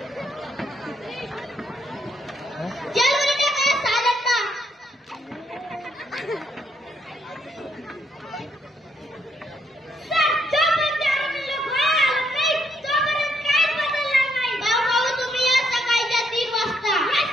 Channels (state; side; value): normal; both; correlation 0.74